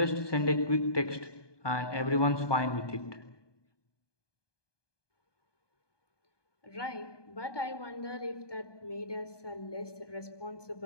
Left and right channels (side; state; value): right; late; 1.2 ms